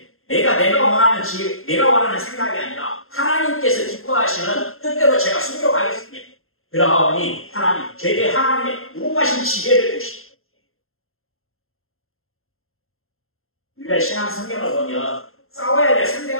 내가 원하는 지혜, 내가 원하는 생각이 아니라 하나님께서 기뻐하시는 뜻대로 제가 순종하겠습니다. 그러하오니 하나님, 제게 하나님의 무궁하신 지혜를 주시고 우리가 신앙 성경을 보면 싸워야 될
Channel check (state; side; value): late; right; 0.61 ms